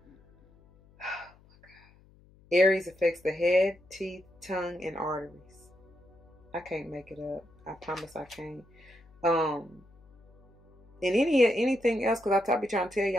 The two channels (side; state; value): left; noise; hum, 28 dB below the sound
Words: Aries affects the head, teeth, tongue, and arteries. I can't make it up. I promise I can't. And anything else, because I be trying to tell